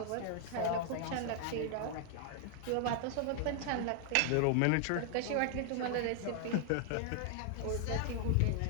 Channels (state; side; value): different; both; correlation 0.00